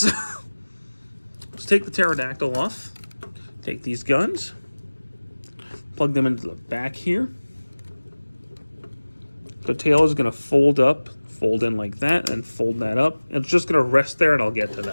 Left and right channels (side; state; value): both; inverted; correlation -1.00